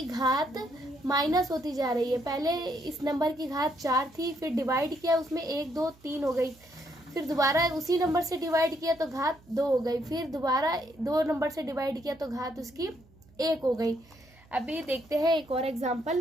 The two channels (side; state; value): right; noise; hum, 28 dB below the sound